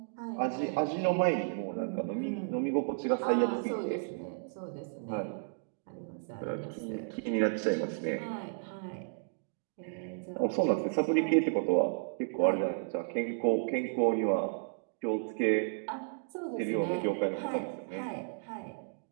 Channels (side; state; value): left; silent; digital silence